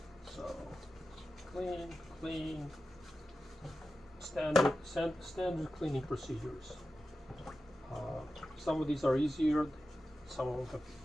so clean, standard cleaning procedures. Some of these are easier, some of them have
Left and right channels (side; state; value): both; normal; correlation 0.92